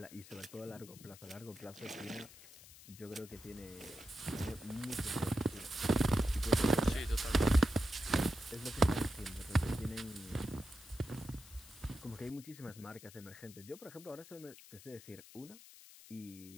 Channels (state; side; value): noise; left; hiss, 18 dB below the sound